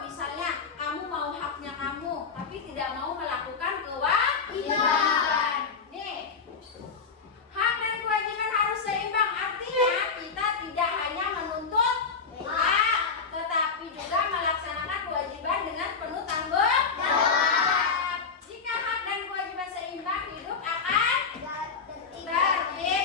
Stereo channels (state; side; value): quieter; right; 5.3 dB